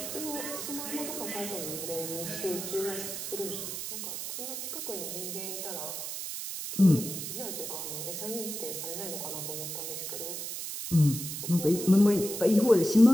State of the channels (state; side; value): noise; right; hiss, 6 dB below the sound